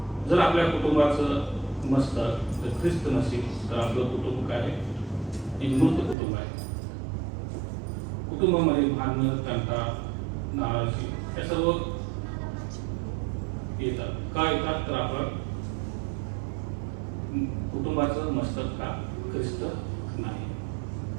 जर आपल्या कुटुंबाचं मस्तक जर ख्रिस्त नसेल तर आपलं कुटुंब काय आहे, एक मृत कुटुंब आहे. कुटुंबामध्ये भांडणं, तंटा, नाराजी हे सर्व येतात. का येतात तर आपण कुटुंबाचं मस्तक का ख्रिस्त नाही.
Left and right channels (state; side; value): drops out; left; at 6.2 s